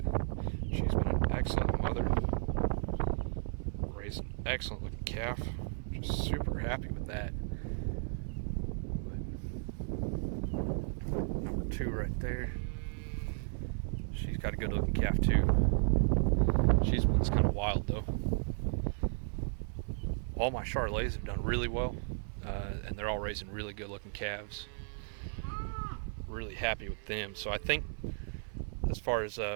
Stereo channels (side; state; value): left; silent; 55 dB below the other